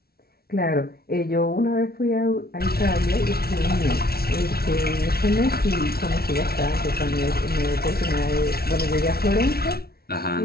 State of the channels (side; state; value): right; late; 0.44 ms